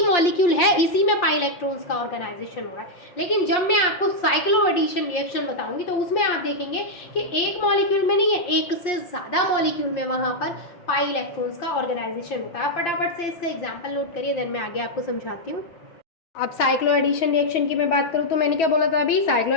मॉलिक्यूल है इसी में पाई इलेक्ट्रॉन्स का ऑर्गेनाइजेशन हो रहा है, लेकिन जब मैं आपको साइक्लो एडिशन रिएक्शन बताऊंगी तो उसमें आप देखेंगे कि एक मॉलिक्यूल में नहीं है, एक से ज़्यादा मॉलिक्यूल में वहाँ पर पाई इलेक्ट्रॉन्स का ऑर्गेनाइजेशन होता है। फटाफट से इसका एग्जाम्पल नोट करिए, देन मैं आगे आपको समझाती हूँ। अब साइक्लो एडिशन रिएक्शन की मैं बात करूँ तो मैंने क्या बोला था अभी, साइक्लो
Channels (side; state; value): right; late; 5.5 ms